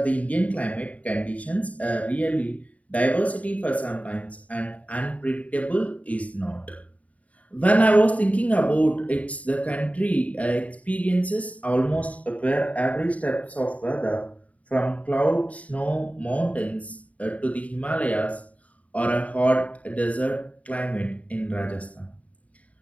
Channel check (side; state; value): right; late; 0.068 ms